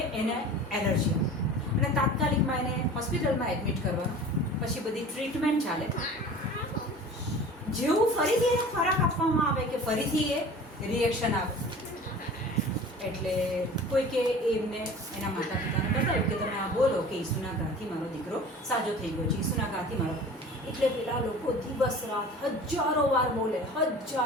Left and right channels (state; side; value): normal; both; correlation 0.41